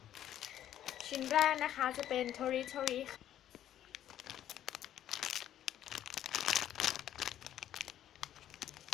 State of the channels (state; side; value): quieter; right; 11.4 dB